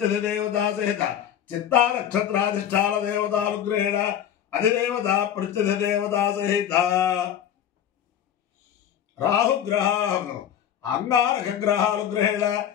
సహిత చిత్తా నక్షత్రాధిష్టాన దేవతానుగ్రహేణ అధిదేవత ప్రత్యధిదేవత సహిత రాహుగ్రహం అంగారక గ్రహానుగ్రహేణ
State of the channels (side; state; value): right; quieter; 9.8 dB